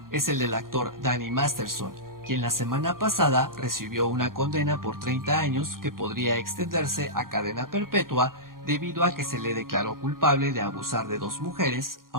es el del actor Danny Masterson, quien la semana pasada recibió una condena por 30 años que podría extenderse a cadena perpetua debido a que se le declaró culpable de abusar de 2 mujeres,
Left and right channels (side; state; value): left; late; 0.91 ms